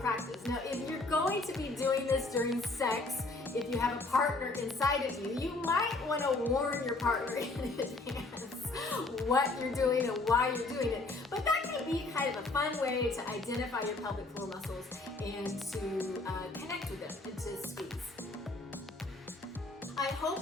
Now, if you're going to be doing this during sex, if you have a partner inside of you, you might want to warn your partner in advance what you're doing and why you're doing it. But that can be kind of a fun way to identify your pelvic floor muscles and to connect with them and to squeeze. I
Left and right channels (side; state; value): right; quieter; 3.2 dB